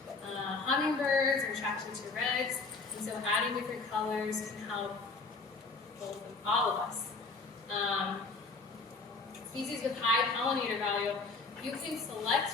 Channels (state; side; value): quieter; right; 3.9 dB